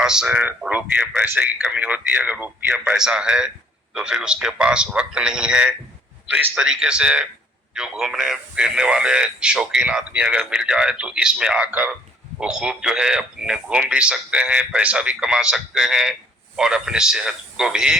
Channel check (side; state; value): both; normal; correlation 0.59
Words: रुपये पैसे की कमी होती है। अगर रुपया पैसा है तो फिर उसके पास वक्त नहीं है। तो इस तरीके से जो घूमने फिरने वाले शौकीन आदमी अगर मिल जाए तो इसमें आकर वो खूब जो है अपने घूम भी सकते हैं, पैसा भी कमा सकते हैं और अपनी सेहत को भी